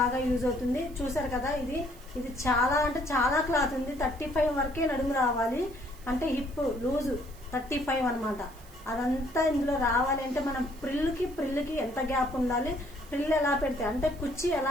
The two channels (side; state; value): right; noise; hiss, 23 dB below the sound